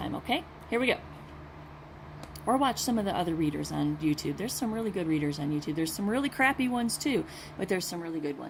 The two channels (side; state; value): both; identical; correlation 1.00